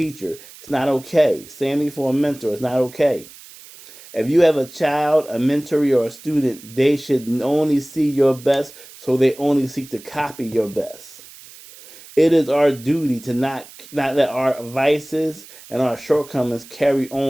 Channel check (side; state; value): right; noise; hiss, 20 dB below the sound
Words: It's not okay. Same thing for a mentor. It's not okay. If you have a child, a mentoree, or a student, they should only see your best, so they only seek to copy your best. It is our duty to not let our vices and our shortcomings carry